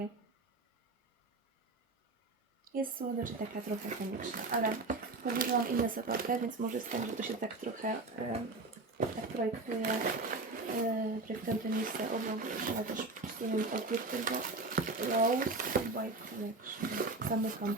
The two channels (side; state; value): left; quieter; 3.4 dB